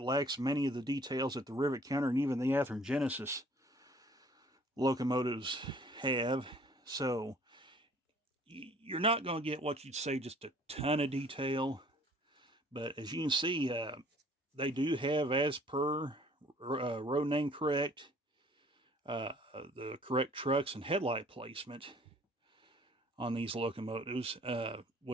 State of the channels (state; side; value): normal; both; correlation 0.55